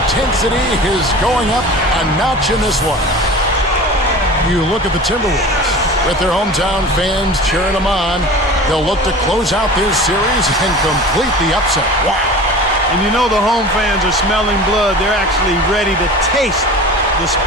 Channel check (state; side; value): normal; both; correlation 0.37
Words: is going up a notch in this one. You look at the Timberwolves. With their hometown fans cheering them on, they'll look to close out this series and complete the upset. Wow. And you know the home fans are smelling blood. They're actually ready to taste the